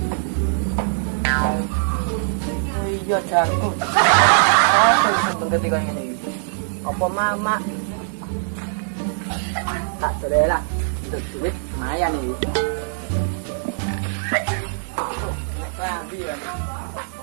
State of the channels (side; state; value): left; silent; digital silence